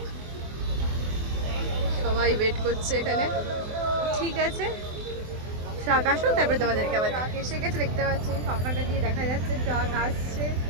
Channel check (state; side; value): late; left; 24 ms